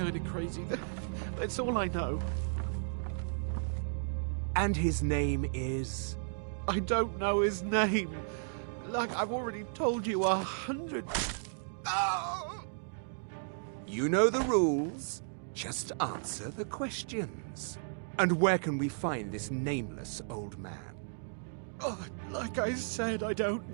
of crazy. That's all I know. And his name is? I don't know his name. Like I've already told you 100. Oh! You know the rules. Just answer the questions. And where can we find this nameless old man? Oh, like I said, I don't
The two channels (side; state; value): left; silent; digital silence